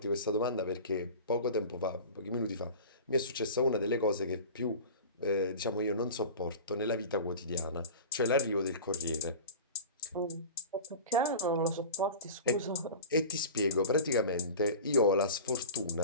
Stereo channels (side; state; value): both; inverted; correlation -0.35